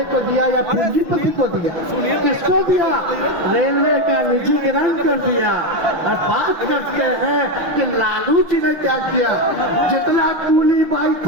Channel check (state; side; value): late; left; 6.3 ms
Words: को दिया या पूंजीपति को दिया? किसको दिया? रेलवे का निजीकरण कर दिया। और बात करते हैं कि लालू जी ने क्या किया। जितना कूली भाई